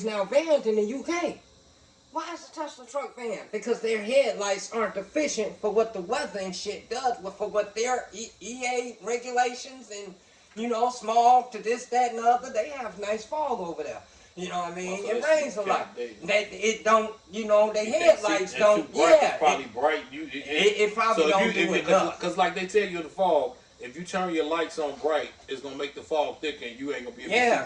now banned in the UK. Why is the Tesla truck banned? Because their headlights aren't efficient for what the weather and shit does, but for what their EA regulations and, you know, smog to this, that, and the other. They have nice fog over there. You know what I mean? It rains a lot. It don't, you know, the headlights don't. It's probably bright. It probably don't do enough. Because like they tell you in the fog, if you turn your lights on bright, it's going to make the fog thicker and you ain't going to be able to see.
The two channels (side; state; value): both; identical; correlation 1.00